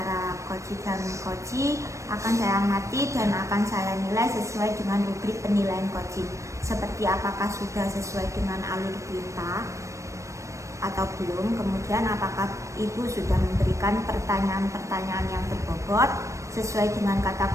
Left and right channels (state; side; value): late; left; 0.15 ms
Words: coach dan coach akan saya amati dan akan saya nilai sesuai dengan rubrik penilaian coaching, seperti apakah sudah sesuai dengan alur perintah atau belum, kemudian apakah ibu sudah memberikan pertanyaan-pertanyaan yang berbobot sesuai dengan kata